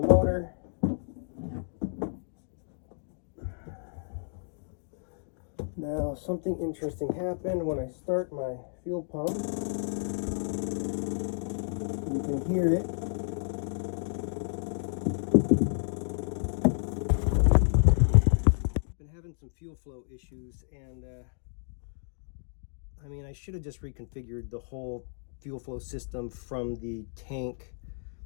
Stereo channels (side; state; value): right; silent; digital silence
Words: motor. Now something interesting happened when I start my fuel pump. You can hear it. Some fuel flow issues, and I mean, I should have just reconfigured the whole fuel flow system from the tank